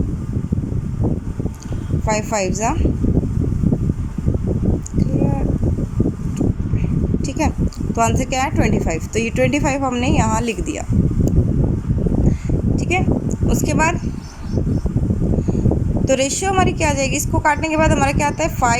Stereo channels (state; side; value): identical; both; correlation 1.00